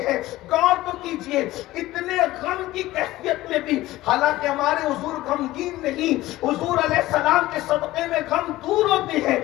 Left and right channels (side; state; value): right; quieter; 16.9 dB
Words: غور تو کیجئے اتنے غم کی کیفیت میں بھی، حالانکہ ہمارے حضور غمگین نہیں، حضور علیہ السلام کے صدقے میں غم دور ہوتے ہیں،